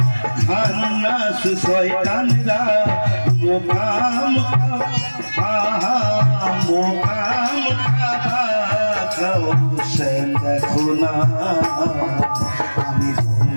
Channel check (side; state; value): both; inverted; correlation -1.00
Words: খান্নাস শয়তানরা মুকাম মুকাম খাও সে দেখো না আমি